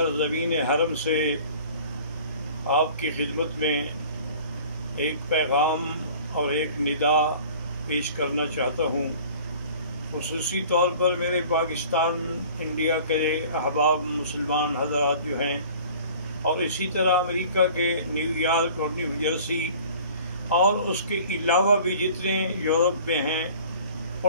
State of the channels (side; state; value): both; inverted; correlation -0.47